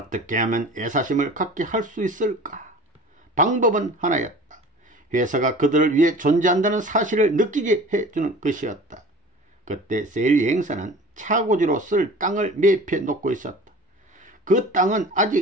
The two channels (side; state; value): both; normal; correlation 0.41